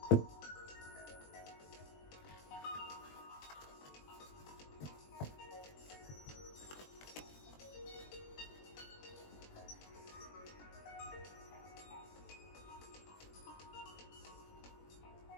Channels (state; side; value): late; right; 20 ms